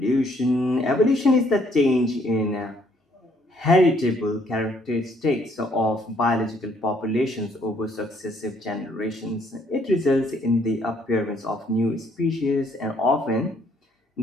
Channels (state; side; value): normal; both; correlation 0.66